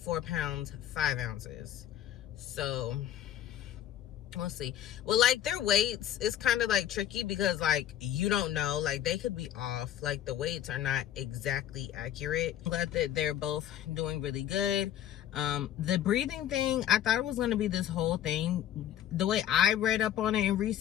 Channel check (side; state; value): right; quieter; 11.4 dB